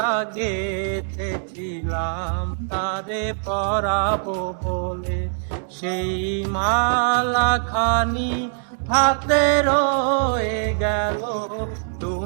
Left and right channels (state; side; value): silent; left; 64 dB below the other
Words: গেথেছিলাম তারে পরাবো বলে, সেই মালা খানি হাতে রয়ে গেল।